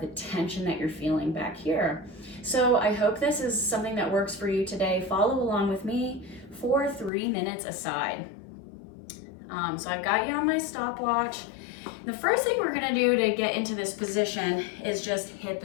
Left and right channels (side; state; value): right; drops out; at 7.1 s